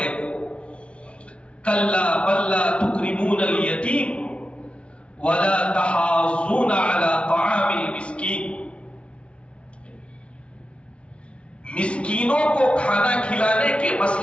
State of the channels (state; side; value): late; right; 0.060 ms